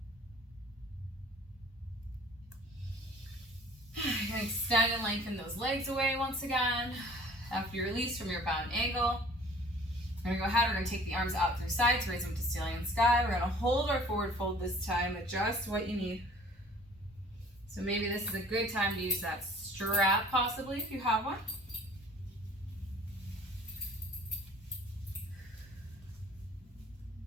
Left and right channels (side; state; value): both; normal; correlation 0.51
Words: You're going to extend and lengthen those legs away once again. After you release from your bound angle, we're going to go ahead, we're going to take the arms out through sides, raise them to ceiling and sky. We're going to hold our forward fold this time, adjust what you need. So maybe this is a good time to use that strap possibly if you have one.